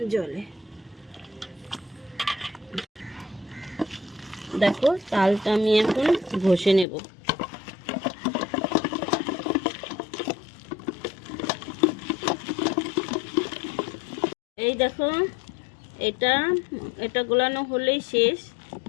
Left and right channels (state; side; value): drops out; right; at 6.9 s